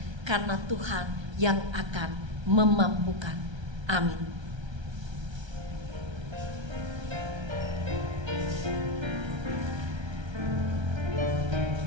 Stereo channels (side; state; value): left; late; 1.3 ms